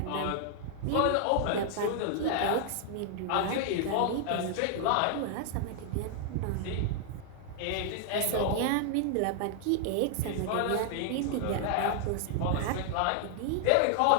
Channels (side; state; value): both; different; correlation -0.01